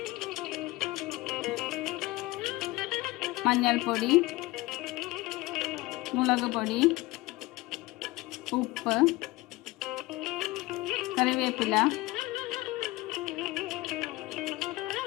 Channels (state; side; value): quieter; right; 20.4 dB